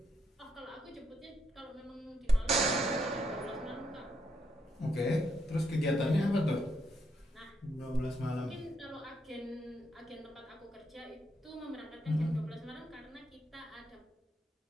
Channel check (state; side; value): normal; both; correlation 0.77